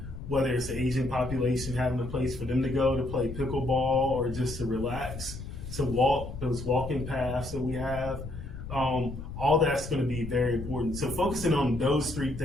Whether it's the Asian population having a place for them to go to play pickleball or just to relax, to walk, those walking paths that we have, all that's going to be very important. So focusing on those three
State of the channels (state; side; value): noise; left; rumble, 9 dB below the sound